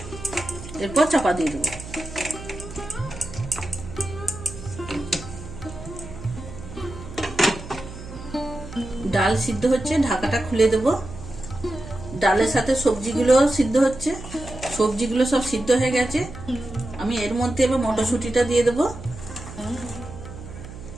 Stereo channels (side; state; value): right; noise; hum, 13 dB below the sound